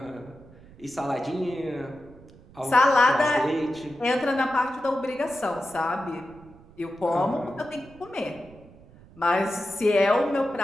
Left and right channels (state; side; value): noise; right; rumble, 23 dB below the sound